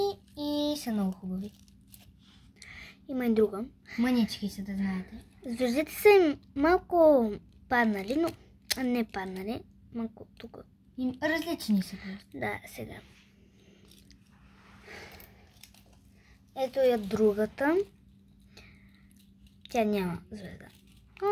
и са много хубави. Има и друга. Мънички са, да знаете. Звездите са им малко паднали, но не паднали. Малко тук. Различни са просто. Да, сега. Ето я другата. Тя няма звезда.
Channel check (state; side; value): identical; both; correlation 1.00